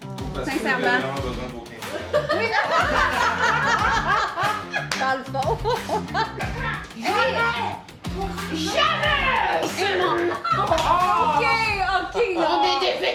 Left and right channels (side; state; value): both; identical; correlation 1.00